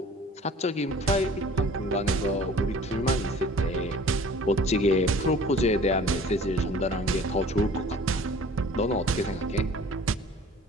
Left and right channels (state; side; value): normal; both; correlation 0.48